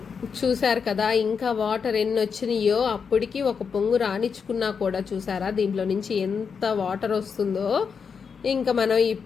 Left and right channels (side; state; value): right; quieter; 6.1 dB